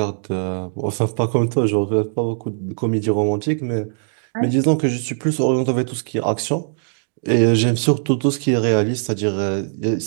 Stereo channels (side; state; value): left; silent; digital silence